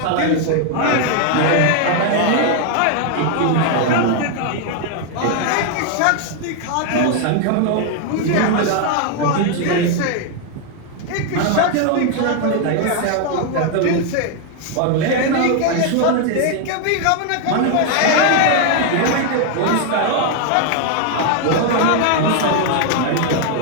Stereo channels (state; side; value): different; both; correlation 0.01